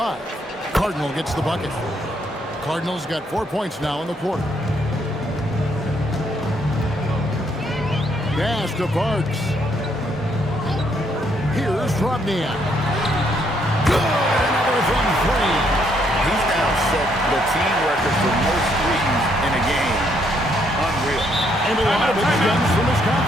Cardinal gets the bucket. Cardinals got 4 points now in the quarter. Pass to Parks. Here's Drobniak. Good! Another from 3. He's now set the team record for most threes in a game. Unreal. And a lot of it stems from his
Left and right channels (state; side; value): normal; both; correlation 0.72